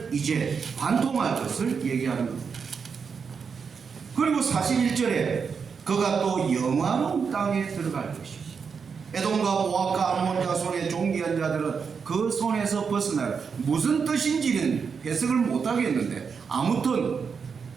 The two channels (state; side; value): quieter; left; 5.9 dB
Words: 이제 관통할 것을 얘기하는 겁니다. 그리고 41절에 그가 또 영화로운 땅에 들어갈 것이지, 에돔과 모압과 암몬 자손의 종기한 자들은 그 손에서 벗어날, 무슨 뜻인지는 해석을 못하겠는데 아무튼